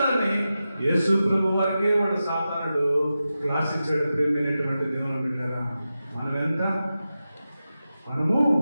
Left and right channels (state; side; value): inverted; both; correlation -0.92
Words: యేసు ప్రభు వారికే వాడు సాతానుడు క్లాస్ ఇచ్చాడు. ప్రేమైనటువంటి దేవుని బిడ్డరా, మనం ఎంత మనము